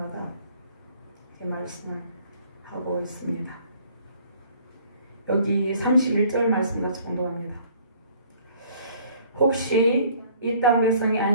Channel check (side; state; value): both; inverted; correlation -0.57